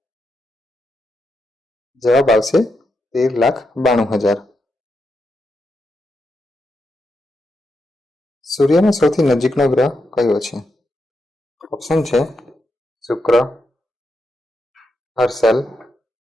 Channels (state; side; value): normal; both; correlation 0.84